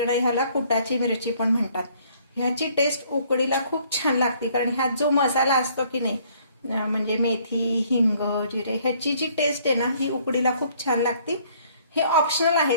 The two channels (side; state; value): both; inverted; correlation -0.62